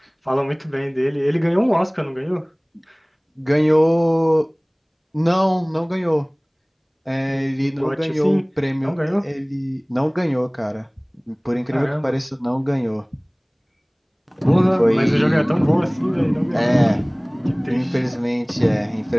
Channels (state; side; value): identical; both; correlation 1.00